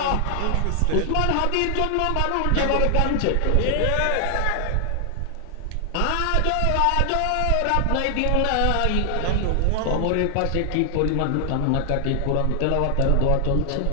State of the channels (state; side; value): different; both; correlation 0.00